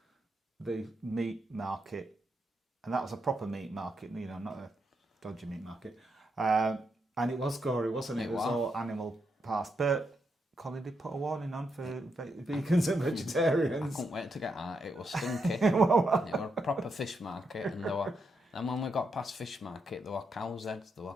the meat market, and that was a proper meat market, you know, not a dodgy meat market, and it was gory, wasn't it? It was all animal parts, but Colin did put a warning on for vegans and vegetarians. I couldn't wait to get out. It was stinky. It was a proper fish market, and when we got past fish market, there were cows' heads, there were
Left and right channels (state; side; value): normal; both; correlation 0.82